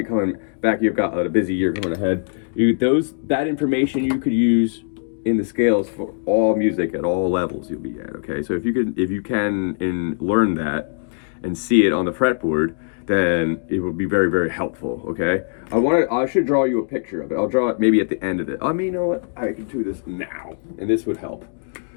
coming back, you've got a busy year coming ahead, that information you could use in the scales for all music at all levels you'll be at, okay? So if you can learn that and see it on the fretboard, then it will be very, very helpful, okay? I should draw you a picture of it. I'll draw it maybe at the end of it. I mean, you know what? I can do this now, and this would help.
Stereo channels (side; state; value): right; silent; digital silence